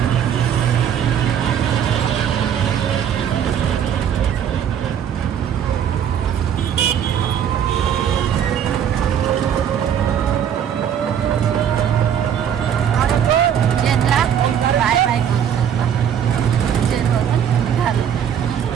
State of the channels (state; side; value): quieter; left; 8.8 dB